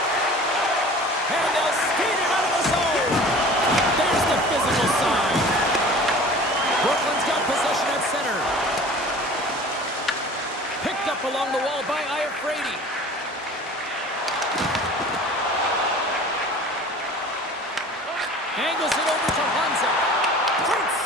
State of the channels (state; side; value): normal; both; correlation 0.43